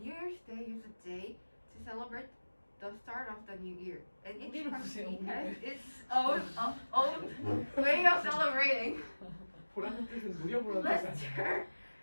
Year's Day is a day to celebrate the start of the new year, and each country has its own way of celebrating. Let's turn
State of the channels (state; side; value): inverted; both; correlation -1.00